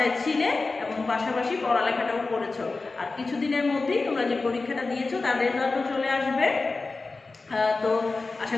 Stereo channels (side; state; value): right; quieter; 3.7 dB